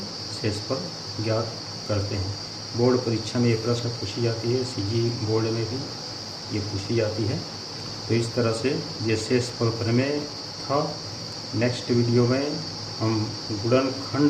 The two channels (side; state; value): both; identical; correlation 1.00